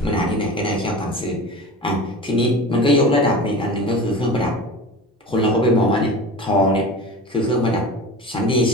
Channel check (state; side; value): normal; both; correlation 0.33